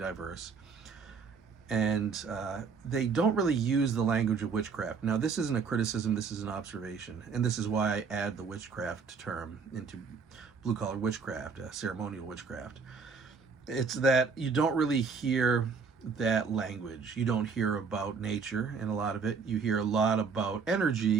And they don't really use the language of witchcraft. Now, this isn't a criticism, this is an observation. And this is why I add the witchcraft term into blue-collar witchcraft, ceremonial witchcraft. It's that you don't really hear that language. You don't hear about nature in a lot of it. You hear a lot about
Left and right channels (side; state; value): left; quieter; 5.4 dB